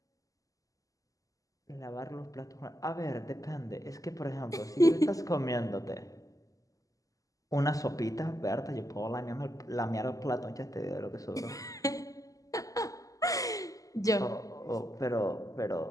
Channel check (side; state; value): right; late; 0.17 ms